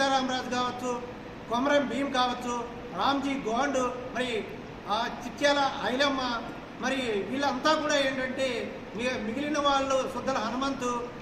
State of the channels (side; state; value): both; identical; correlation 1.00